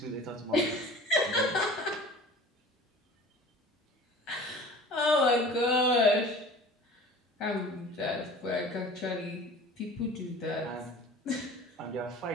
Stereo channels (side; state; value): both; normal; correlation 0.42